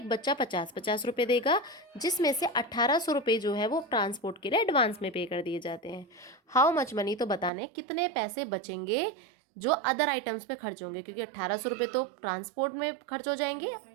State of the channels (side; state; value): left; drops out; at 7.5 s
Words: बच्चा 50-50 रुपये देगा, जिसमें से 1800 रुपये जो है वो ट्रांसपोर्ट के लिए एडवांस में पे कर दिए जाते हैं। हाउ मच मनी, तो बताने कितने पैसे बचेंगे जो अदर आइटम्स पे खर्च होंगे, क्योंकि 1800 रुपये तो ट्रांसपोर्ट में खर्च हो जाएंगे,